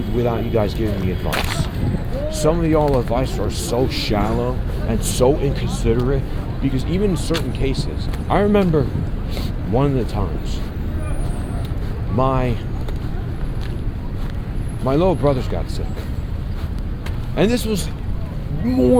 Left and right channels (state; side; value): identical; both; correlation 1.00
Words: without you guys giving me advice. Some of y'all advice are so shallow and so inconsiderate, because even in certain cases, I remember one of the times my little brothers got sick, and this was